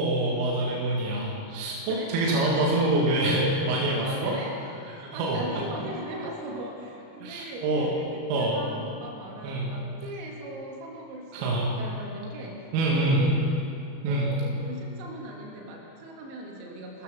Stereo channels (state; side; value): late; left; 37 ms